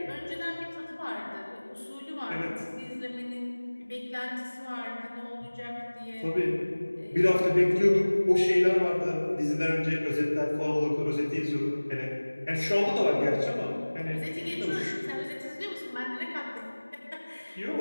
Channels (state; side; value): inverted; both; correlation -1.00